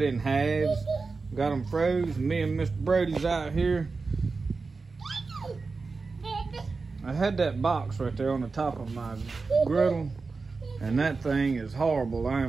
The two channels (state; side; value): quieter; left; 4.2 dB